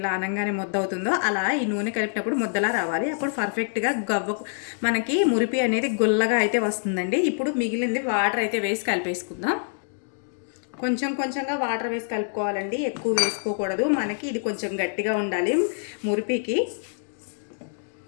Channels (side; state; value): right; silent; digital silence